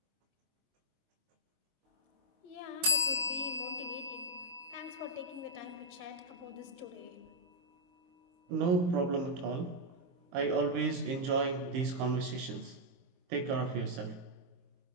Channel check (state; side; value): late; left; 22 ms